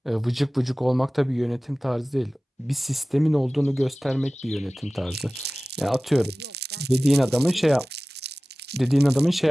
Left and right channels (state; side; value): normal; both; correlation 0.97